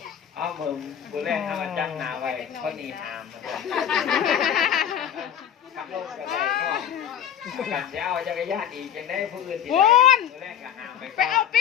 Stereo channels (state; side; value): quieter; right; 9.3 dB